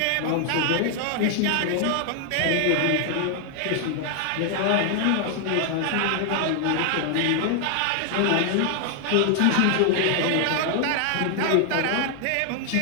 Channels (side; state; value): both; different; correlation 0.00